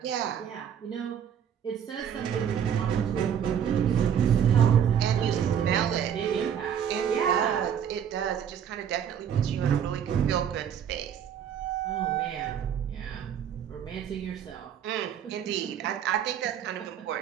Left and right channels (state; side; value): quieter; left; 8.7 dB